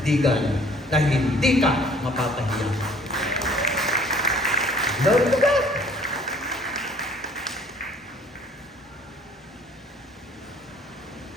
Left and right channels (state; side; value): normal; both; correlation 0.55